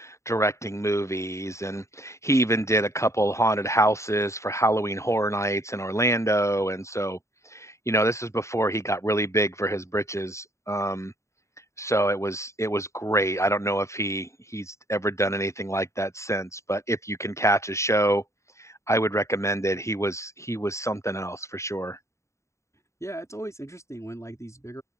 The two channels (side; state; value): right; late; 0.14 ms